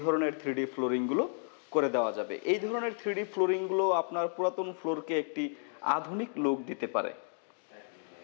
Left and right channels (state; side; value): silent; right; 56 dB below the other